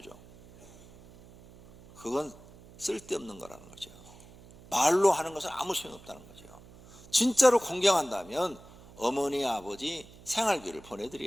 그건 쓸데없는 거라는 거죠. 말로 하는 것은 아무 소용없다는 거죠. 진짜로 공경한다면 어머니 아버지 생활비를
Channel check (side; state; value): right; noise; hum, 21 dB below the sound